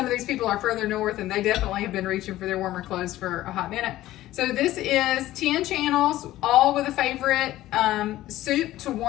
of these people are further north and they definitely have been reaching for their warmer clothes for a hot minute. So this is 10 channels, all with a favorite soup to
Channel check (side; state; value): right; quieter; 15.2 dB